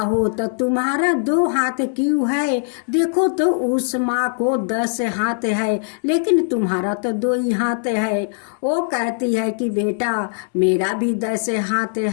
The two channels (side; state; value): right; silent; 64 dB below the other